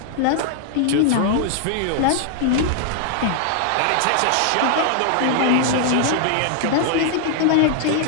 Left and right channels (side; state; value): both; different; correlation 0.00